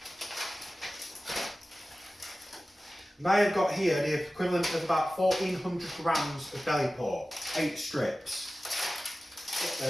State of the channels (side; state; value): both; normal; correlation 0.96